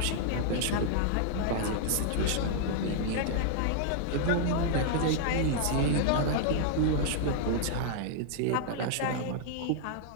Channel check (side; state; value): both; different; correlation -0.01